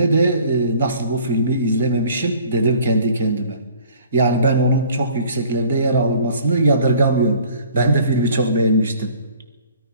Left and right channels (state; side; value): inverted; both; correlation -0.53